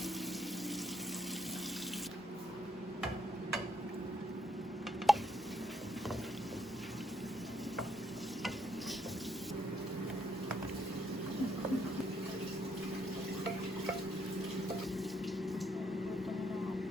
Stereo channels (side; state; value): both; normal; correlation 0.74